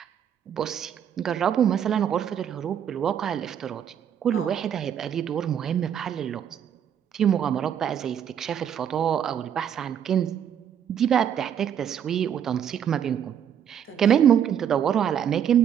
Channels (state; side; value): quieter; left; 9.0 dB